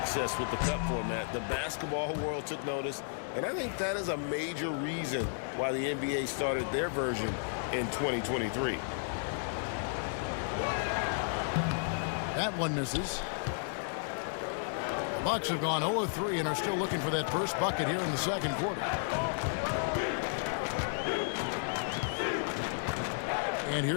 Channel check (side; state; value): right; silent; 56 dB below the other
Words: with the Cup format. The basketball world took notice, and I think that is a major reason why the NBA started their version in 2023. That one misses. Bucks have gone 0-3 and are still looking for that first bucket here in the second quarter. And